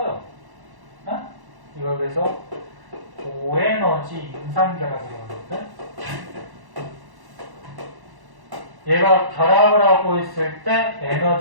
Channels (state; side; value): late; left; 1.1 ms